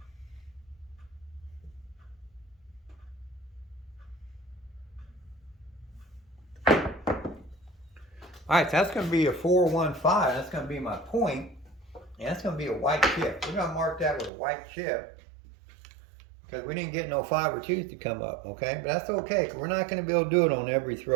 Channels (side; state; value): left; drops out; at 14.3 s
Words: All right, so that's going to be a 415. That's going to be my point, and that's going to be a white chip. We're going to mark that with a white chip because we didn't get no 5 or 2s to come up, okay? But that's okay, because we're not going to be able to do it on every